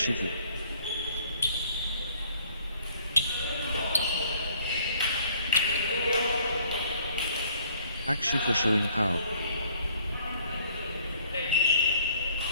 Akshif showing power.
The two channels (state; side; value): inverted; both; correlation -0.60